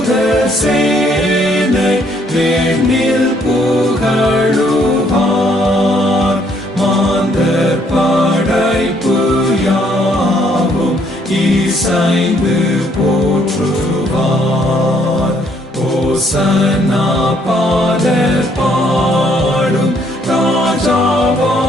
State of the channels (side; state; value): both; normal; correlation 0.67